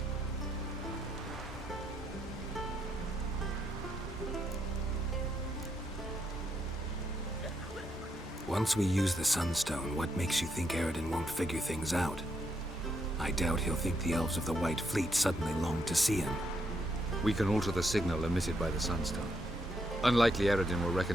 Once we use the Sunstone, what makes you think Aridin won't figure things out? I doubt he'll think the elves of the White Fleet suddenly long to see him. We can alter the signal emitted by the Sunstone. Unlikely Aridin will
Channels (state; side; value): normal; both; correlation 0.78